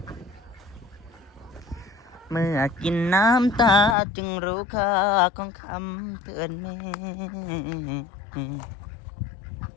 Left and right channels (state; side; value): drops out; right; at 4.0 s